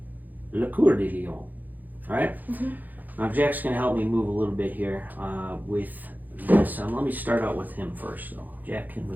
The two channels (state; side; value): late; left; 0.084 ms